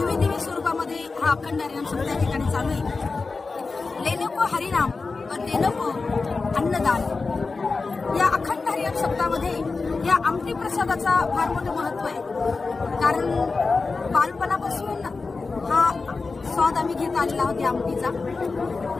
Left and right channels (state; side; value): quieter; right; 4.1 dB